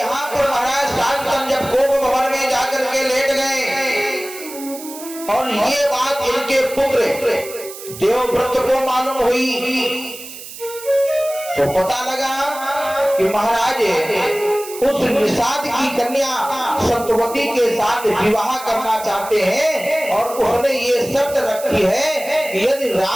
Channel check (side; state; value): right; noise; hiss, 13 dB below the sound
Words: पर महाराज शांतन जब कोप भवन में जाकर के लेट गए, और ये बात इनके पुत्र देवव्रत को मालूम हुई, तो पता लगा कि महाराज उस निषाद की कन्या सत्यवती के साथ विवाह करना चाहते हैं, और उसने ये शर्त रखी है कि यदि